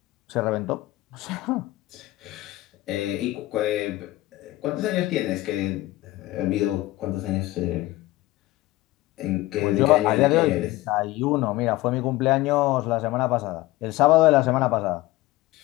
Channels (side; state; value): right; quieter; 18.1 dB